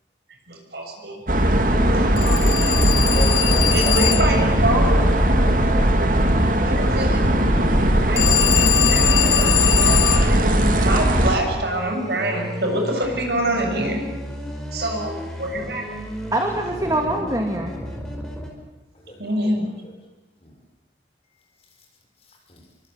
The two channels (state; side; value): normal; both; correlation 0.52